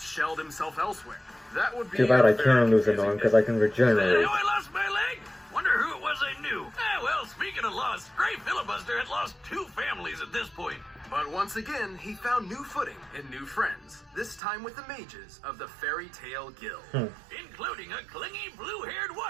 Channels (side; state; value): left; drops out; at 14.4 s